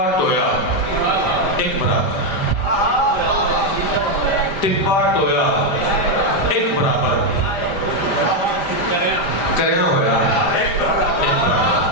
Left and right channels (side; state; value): right; late; 5.0 ms